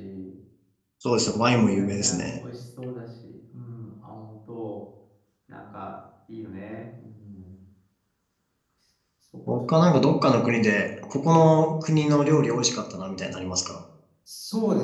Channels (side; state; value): both; identical; correlation 1.00